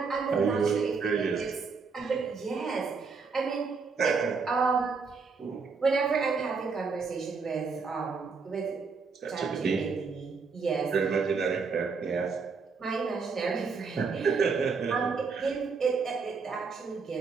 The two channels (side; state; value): left; quieter; 5.0 dB